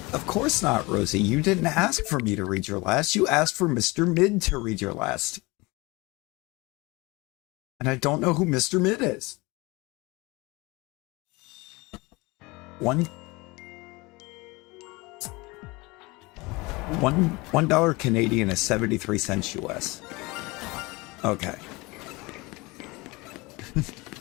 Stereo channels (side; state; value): right; quieter; 23.9 dB